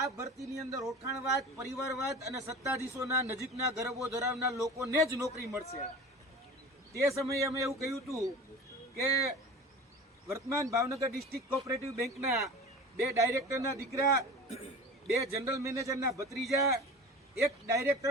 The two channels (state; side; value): normal; both; correlation 0.36